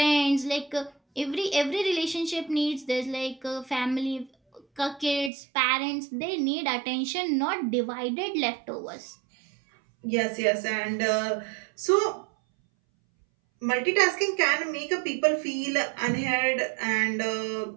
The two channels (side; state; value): left; drops out; at 5.3 s